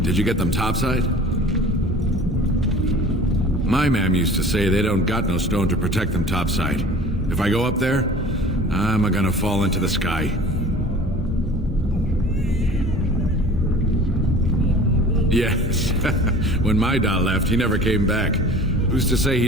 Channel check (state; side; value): normal; both; correlation 0.44